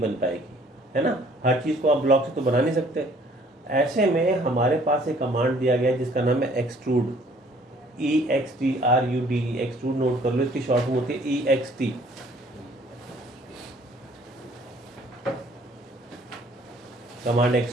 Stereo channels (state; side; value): normal; both; correlation 0.58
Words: बन पाएगी, है ना। हर चीज़ को आप ब्लॉक से तो बना नहीं सकते। ऐसे में हमारे पास एक कमांड दिया गया है जिसका नाम है एक्सट्रूड, EXTRUD, एक्सट्रूड नोट कर लो, इसकी शॉर्ट फॉर्म होती है EXT। Command